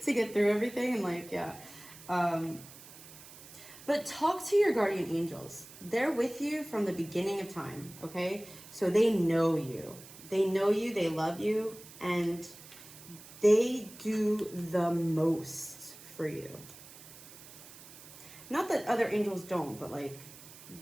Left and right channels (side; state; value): right; noise; hiss, 18 dB below the sound